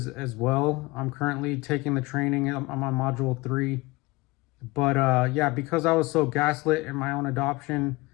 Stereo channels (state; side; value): quieter; right; 22.3 dB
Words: well. I'm currently taking the training. I'm on module 3. But yeah, because I was so gaslit in my own adoption,